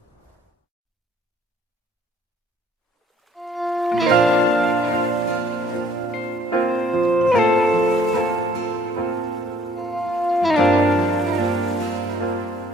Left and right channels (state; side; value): normal; both; correlation 0.59